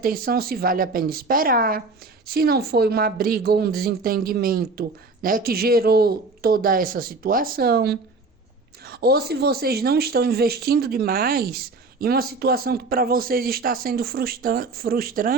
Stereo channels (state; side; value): quieter; left; 3.7 dB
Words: se vale a pena esperar, se não foi uma briga ou um desentendimento, né, que gerou toda essa situação, ou se vocês não estão investindo demais em uma situação que para vocês está sendo